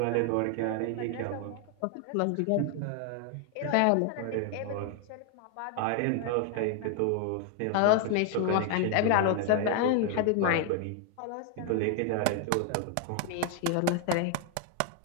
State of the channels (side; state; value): both; different; correlation 0.00